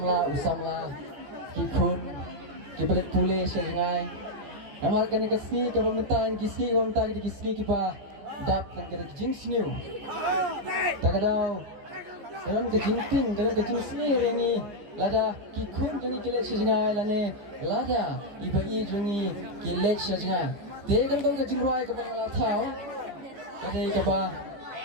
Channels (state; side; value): late; left; 14 ms